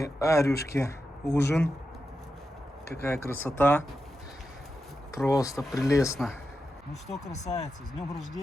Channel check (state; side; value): normal; both; correlation 0.89